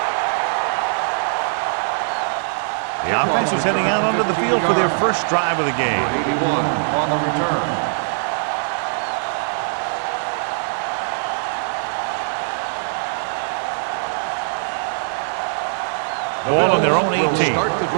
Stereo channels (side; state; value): left; silent; digital silence